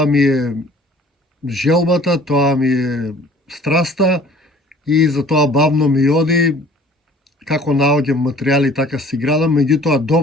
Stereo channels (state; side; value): normal; both; correlation 0.51